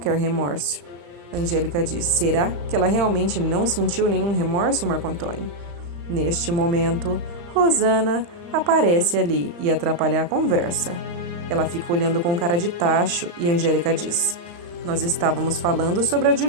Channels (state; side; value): late; left; 35 ms